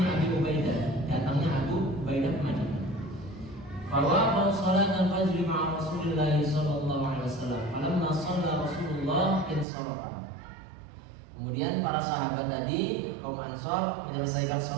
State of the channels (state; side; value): drops out; left; at 9.7 s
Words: Abi Ubaidah. Datangnya Abu Ubaidah ke Madinah. Fawaqa salat al-fajr ma'a Rasulillah sallallahu alaihi wasallam. Falamma shalla Rasulullah insarafa. Kemudian para sahabat tadi kaum Ansor menyelesaikan